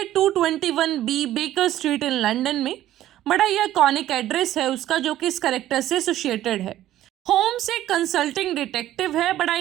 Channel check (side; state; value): left; quieter; 13.4 dB